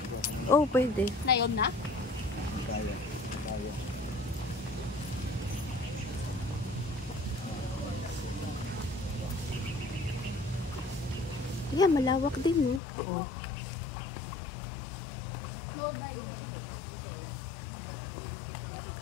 Oh, pwede. Na yun na? Ayan, malawak din, no? Oh. No dive.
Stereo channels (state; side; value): drops out; right; at 12.8 s